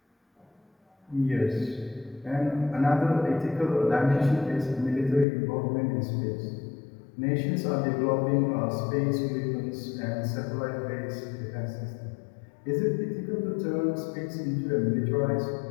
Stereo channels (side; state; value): right; drops out; at 5.2 s